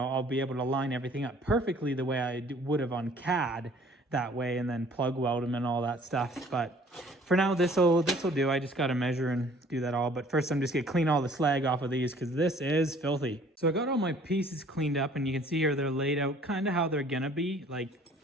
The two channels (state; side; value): normal; both; correlation 0.54